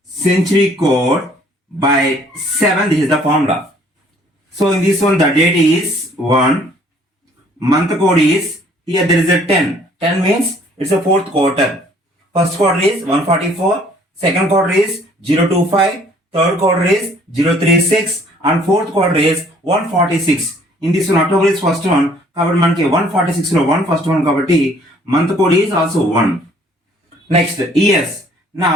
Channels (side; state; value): both; normal; correlation 0.59